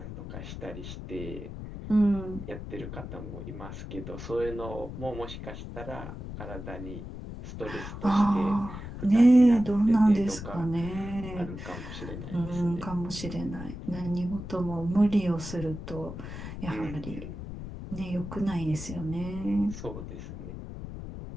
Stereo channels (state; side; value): noise; left; rumble, 9 dB below the sound